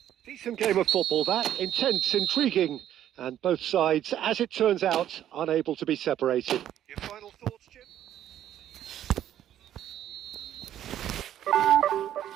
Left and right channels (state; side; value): quieter; left; 11.3 dB